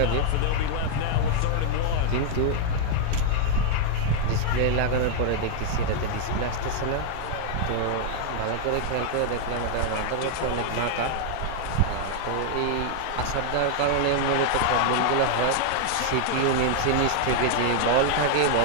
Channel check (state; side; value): different; both; correlation -0.01